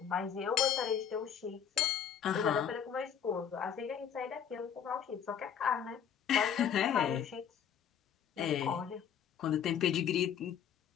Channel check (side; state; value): right; quieter; 8.3 dB